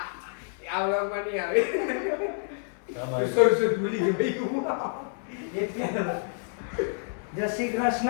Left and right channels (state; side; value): silent; right; 59 dB below the other